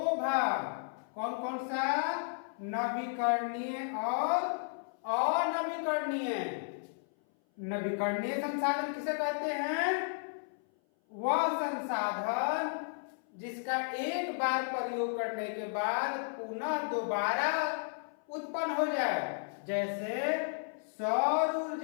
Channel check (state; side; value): silent; right; 55 dB below the other